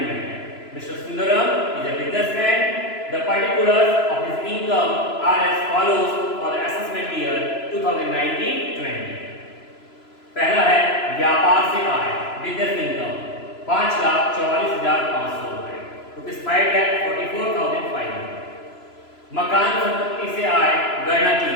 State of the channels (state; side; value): late; right; 3.0 ms